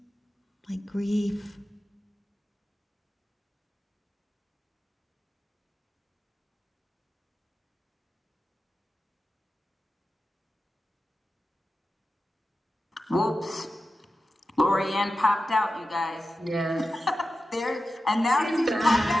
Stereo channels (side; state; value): both; normal; correlation 0.92